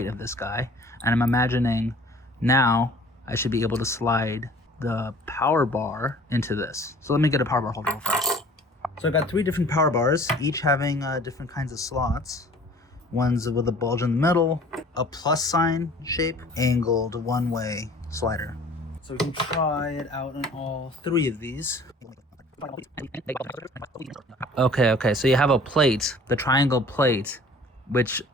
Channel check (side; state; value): both; normal; correlation 0.49